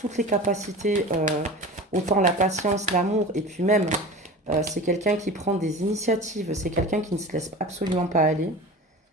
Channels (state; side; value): normal; both; correlation 0.34